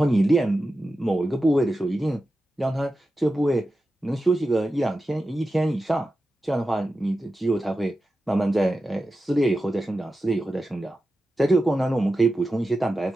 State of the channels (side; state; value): both; normal; correlation 0.92